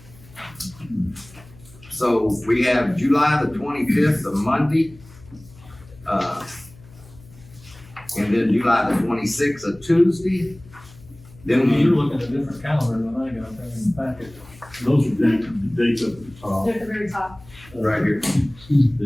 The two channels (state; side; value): noise; left; hum, 22 dB below the sound